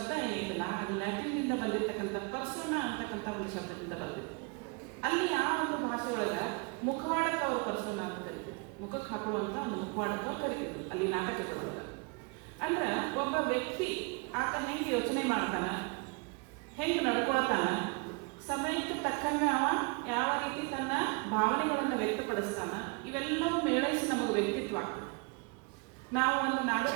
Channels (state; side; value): quieter; left; 31.5 dB